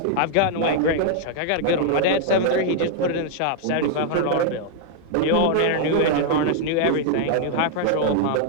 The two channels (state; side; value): different; both; correlation 0.00